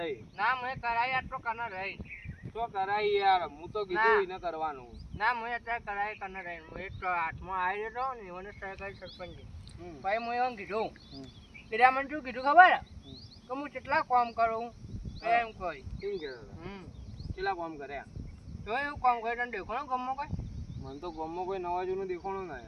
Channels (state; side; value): identical; both; correlation 1.00